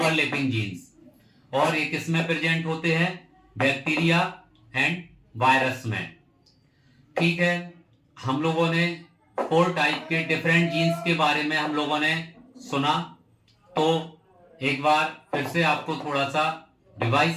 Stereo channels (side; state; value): both; identical; correlation 1.00